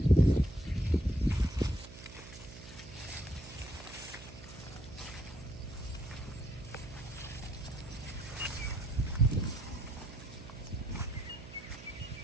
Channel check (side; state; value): right; noise; hum, 15 dB below the sound